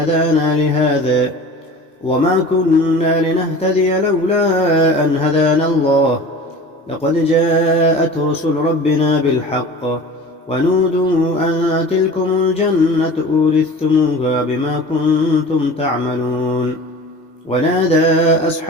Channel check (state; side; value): normal; both; correlation 0.38